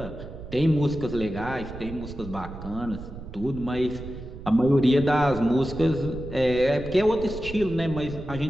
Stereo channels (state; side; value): noise; right; rumble, 12 dB below the sound